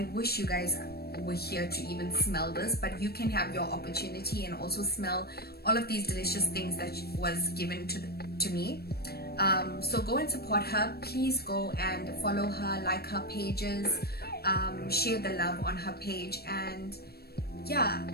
wish you guys were here to even smell this, but you can have your opportunity and also smell all of these delicious things that was given to me. So go and support her. Please go and follow her, like her pages, share the love on her page. And yeah,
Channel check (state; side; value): late; right; 0.46 ms